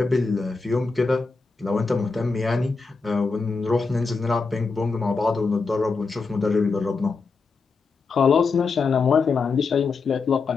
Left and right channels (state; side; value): quieter; right; 4.4 dB